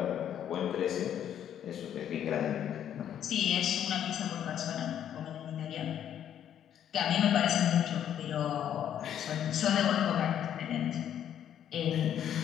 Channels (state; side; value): quieter; right; 10.0 dB